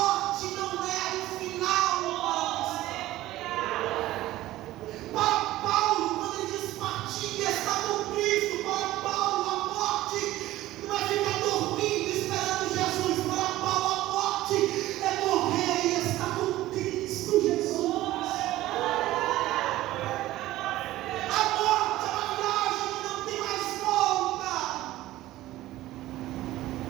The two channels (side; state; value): left; quieter; 15.9 dB